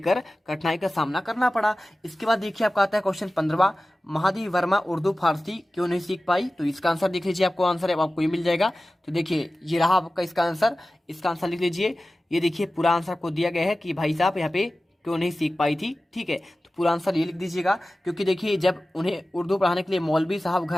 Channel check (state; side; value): normal; both; correlation 0.96